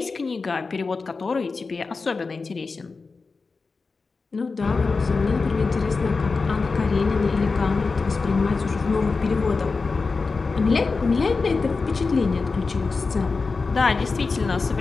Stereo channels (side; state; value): right; quieter; 4.3 dB